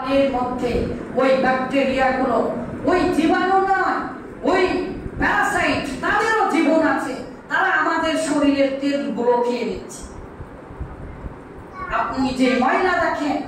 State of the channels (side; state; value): both; identical; correlation 1.00